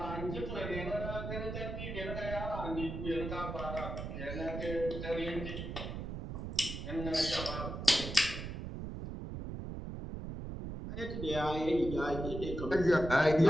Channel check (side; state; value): right; noise; rumble, 6 dB below the sound